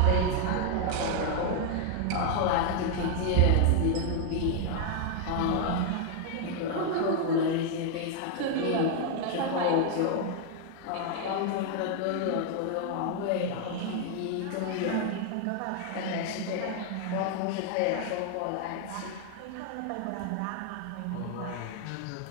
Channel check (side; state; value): both; different; correlation 0.00